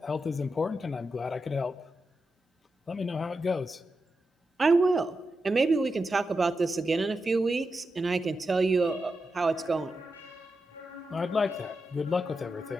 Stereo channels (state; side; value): normal; both; correlation 0.88